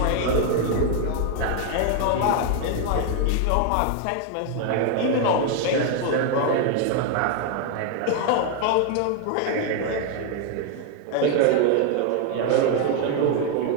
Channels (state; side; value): different; both; correlation 0.00